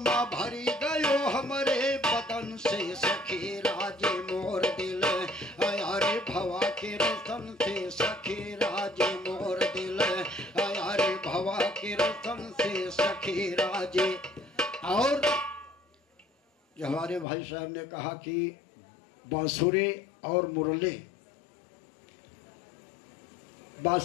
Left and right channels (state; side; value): drops out; right; at 17.2 s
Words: भरी गयो हमारे बदन से सखी राजे मोर दिल। अरे भवा के रसन से सखी राजे मोर दिल, अरे भवा के रसन से सखी राजे। और जो हमारे भाई साहब ने कहा कि बांसुरी और मुरली,